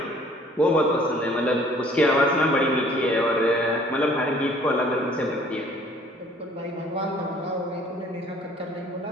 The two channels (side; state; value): both; normal; correlation 0.56